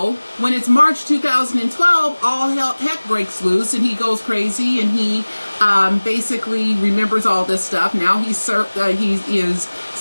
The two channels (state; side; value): inverted; both; correlation -1.00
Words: when it's March 2012, all heck breaks loose, and he goes crazy, and he basically remembers all this stuff. Now he is